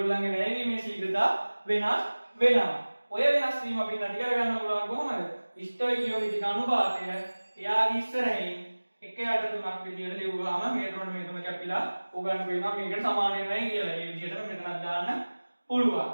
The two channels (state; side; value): inverted; both; correlation -1.00